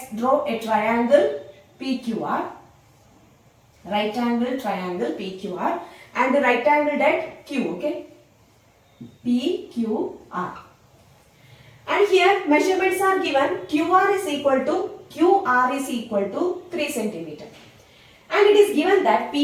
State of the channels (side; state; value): both; identical; correlation 1.00